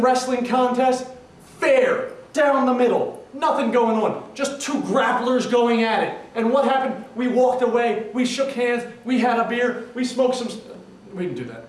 wrestling contest. Fair. Down the middle. Nothing going on. Just two grapplers going at it. And what happened? We walked away. We shook hands. We had a beer. We smoked some... We didn't do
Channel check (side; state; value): both; identical; correlation 1.00